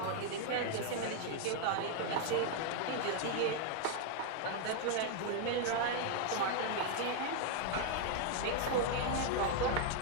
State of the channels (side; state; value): both; different; correlation 0.00